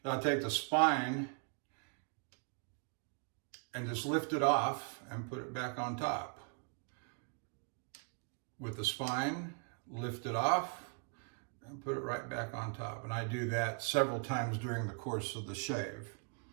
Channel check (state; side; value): quieter; left; 37.1 dB